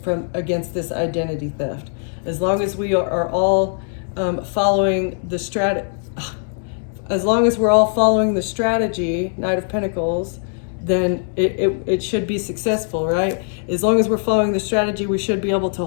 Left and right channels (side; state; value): right; silent; digital silence